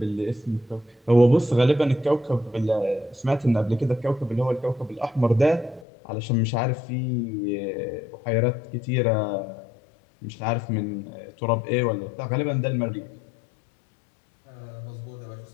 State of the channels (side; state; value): right; drops out; at 5.9 s